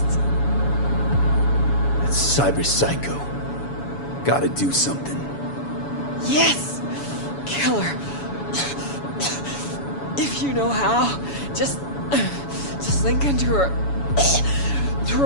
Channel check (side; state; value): right; late; 7.1 ms